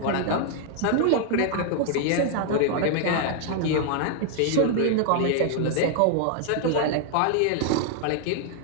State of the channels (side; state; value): both; different; correlation 0.00